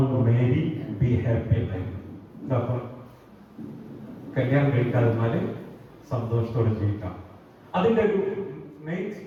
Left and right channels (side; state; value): both; identical; correlation 1.00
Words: marry be happy എന്നായിരുന്നു. കല്യാണം കഴിക്കാതിരുന്നാല് സന്തോഷത്തോടെ ജീവിക്കാം. അതിന്റെ ഒരു മെയിൻ